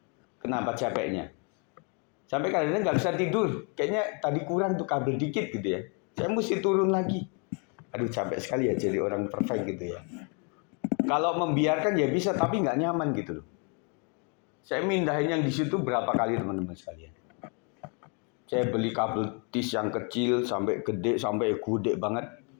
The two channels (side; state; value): right; quieter; 36.5 dB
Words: Kenapa capeknya? Sampai kadang-kadang nggak bisa tidur. Kayaknya tadi kurang tuh kabel dikit gitu ya. Saya mesti turun lagi. Aduh capek sekali ya jadi orang perfect gitu ya. Kalau membiarkan ya bisa, tapi nggak nyaman gitu loh. Saya mindahin yang di situ berapa kali teman-teman sekalian. Saya beli kabel tis yang kecil sampai gede banget.